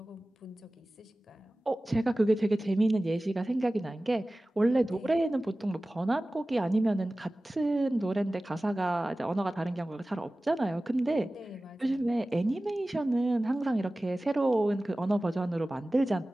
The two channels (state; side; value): normal; both; correlation 0.97